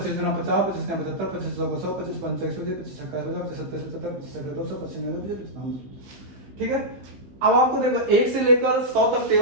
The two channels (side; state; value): left; late; 15 ms